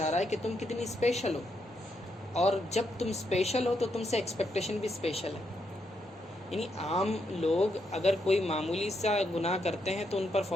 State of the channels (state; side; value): normal; both; correlation 0.80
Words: رہا ہے کہ تم کتنی اسپیشل ہو، اور جب تم اسپیشل ہو تو تم سے ایکسپیکٹیشن بھی اسپیشل ہے۔ یعنی عام لوگ اگر کوئی معمولی سا گناہ کرتے ہیں تو ان پر